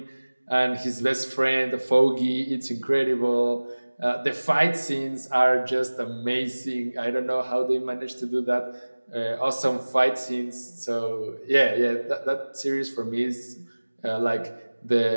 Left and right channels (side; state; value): both; inverted; correlation -1.00